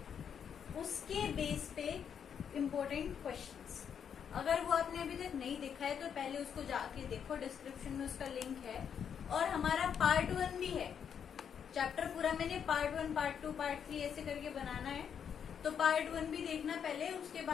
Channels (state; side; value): quieter; right; 7.8 dB